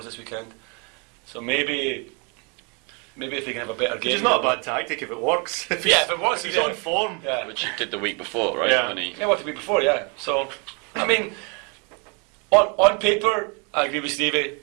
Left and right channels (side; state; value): left; quieter; 33.7 dB